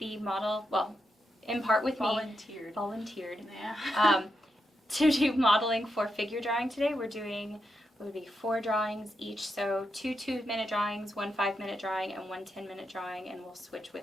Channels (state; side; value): normal; both; correlation 0.85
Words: model, well, in part with Volunteered. Yeah. To do modeling for figure drawing today. We're doing, what would be 4 drawings each, so 2 2-minute drawings, 1 5-minute drawing, and 1 10-minute drawing, and we'll switch